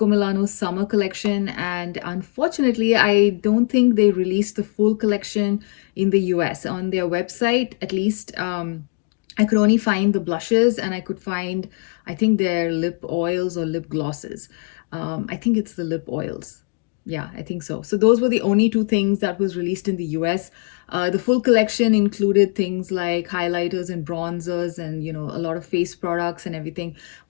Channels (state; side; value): quieter; right; 36.2 dB